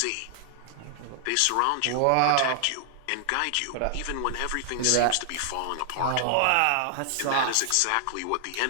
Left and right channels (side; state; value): both; different; correlation 0.00